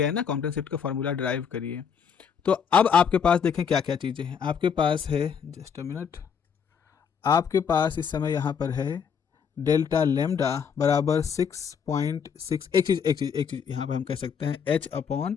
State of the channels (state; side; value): quieter; right; 7.0 dB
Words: है ना, कॉम्पटन शिफ्ट का फॉर्मूला डिराइव करिए। तो अब आपके पास देखें क्या क्या चीज़ें हैं। आपके पास है, जस्ट अ मिनट, आपके पास इस समय यहाँ पर है डेल्टा लेमडा बराबर 6.6। एक चीज़ यहाँ पर हम कह सकते हैं H upon